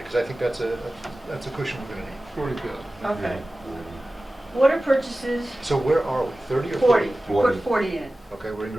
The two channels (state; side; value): normal; both; correlation 0.96